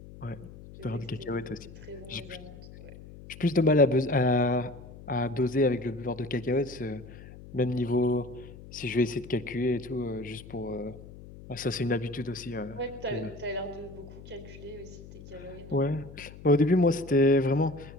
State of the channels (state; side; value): noise; left; hum, 17 dB below the sound